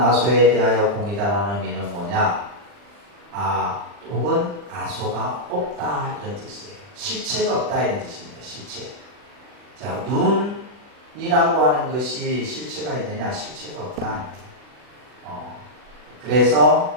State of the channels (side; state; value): left; late; 40 ms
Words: 대하여 공이다라는 의미는 뭐냐? 아 혹은 아소가 없다 이런 뜻이에요. 실체가 없다 이런 뜻입니다. 실체. 자, 눈이라고 하는 것이 실체가 있느냐? 실체가 없다.